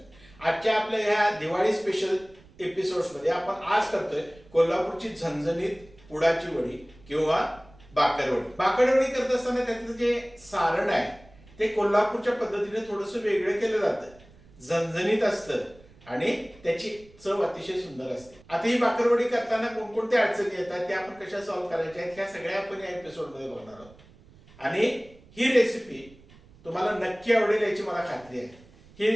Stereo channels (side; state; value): right; noise; rumble, 25 dB below the sound